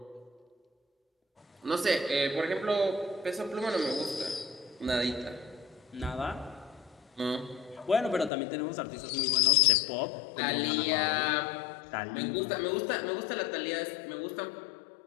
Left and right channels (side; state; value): right; drops out; at 8.3 s